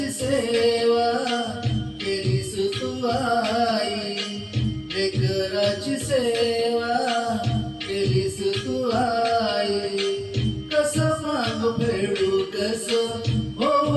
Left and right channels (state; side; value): identical; both; correlation 1.00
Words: सेवा केलीस तू आई, लेकराची सेवा केलीस तू आई. कस मागू फेडू कस हो